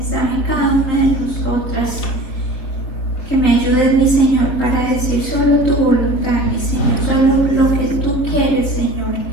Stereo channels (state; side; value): late; right; 4.0 ms